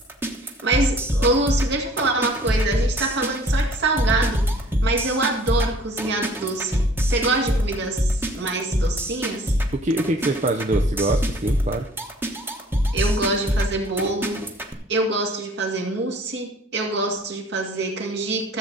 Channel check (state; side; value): normal; both; correlation 0.52